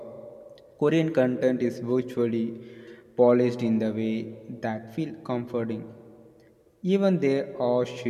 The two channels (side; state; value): both; identical; correlation 1.00